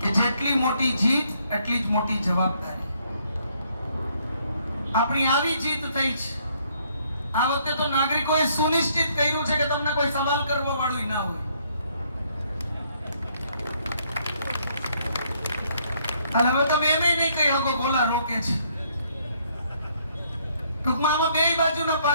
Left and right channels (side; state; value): both; inverted; correlation -0.68